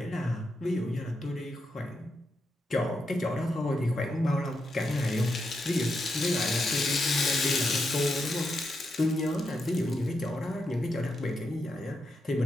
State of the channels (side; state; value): both; normal; correlation 0.84